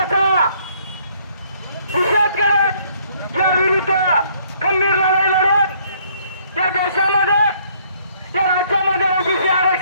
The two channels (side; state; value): both; inverted; correlation -0.65